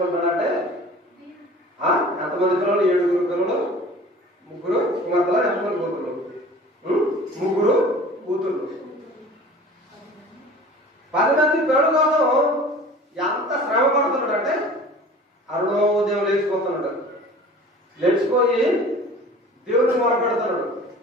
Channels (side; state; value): both; normal; correlation 0.43